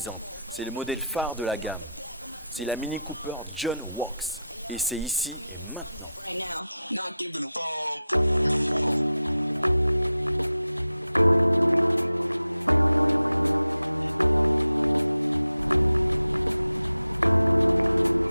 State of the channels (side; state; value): both; inverted; correlation -0.88